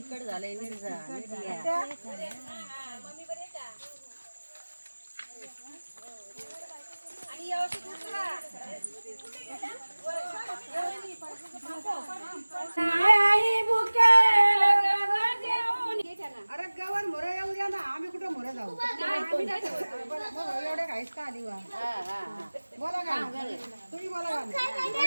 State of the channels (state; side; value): inverted; both; correlation -1.00